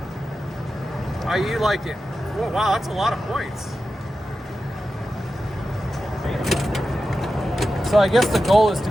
How you like it? Whoa, wow, that's a lot of points. So I guess the goal is to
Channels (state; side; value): normal; both; correlation 0.92